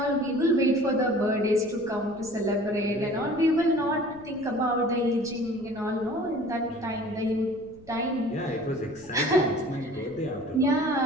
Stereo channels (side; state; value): left; noise; rumble, 24 dB below the sound